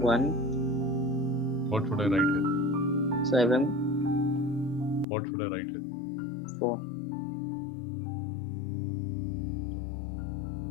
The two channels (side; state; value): right; drops out; at 5.1 s